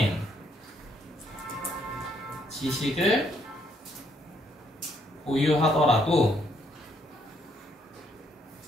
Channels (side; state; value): both; normal; correlation 0.71